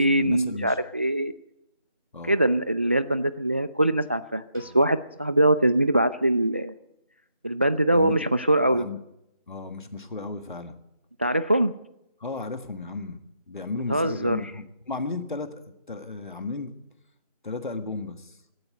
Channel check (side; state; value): both; inverted; correlation -0.78